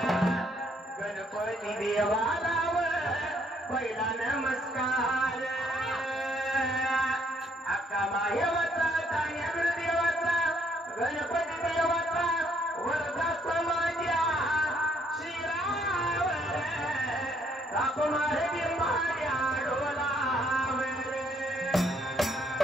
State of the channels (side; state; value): both; normal; correlation 0.68